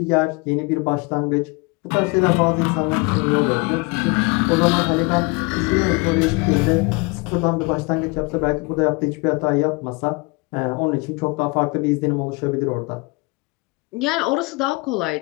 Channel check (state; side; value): quieter; right; 27.3 dB